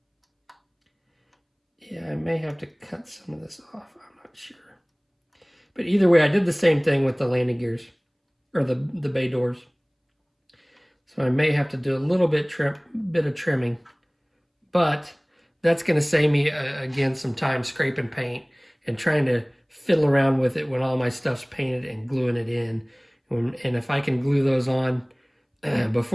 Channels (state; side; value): identical; both; correlation 1.00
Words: Yeah, I may have to cut some of this off, I'm not sure. But either way, I did the same thing with the landing gears, or the bay doors. So I may have to do a little bit of trimming, but that's going to save me, again, some time scraping paint and trying to fiddle around with it when all my stuff's painted and gluing it in. And if I can glue those on